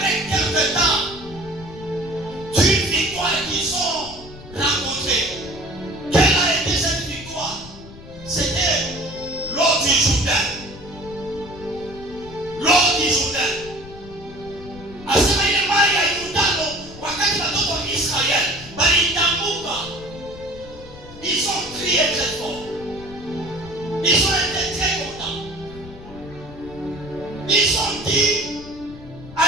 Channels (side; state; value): left; noise; rumble, 17 dB below the sound